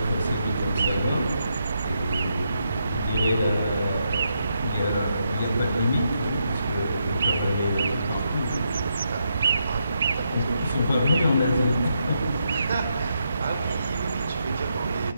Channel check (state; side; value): inverted; both; correlation -0.81